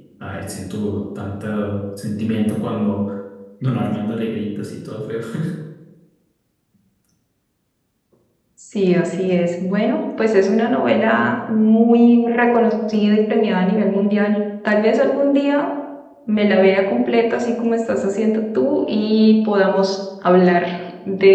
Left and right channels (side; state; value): both; identical; correlation 1.00